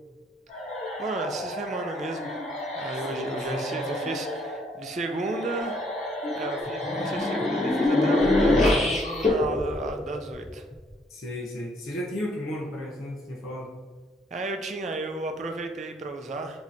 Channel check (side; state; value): both; normal; correlation 0.66